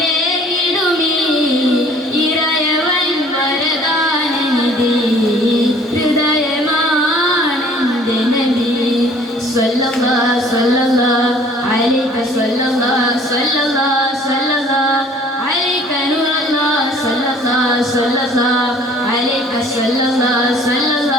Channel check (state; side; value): normal; both; correlation 0.54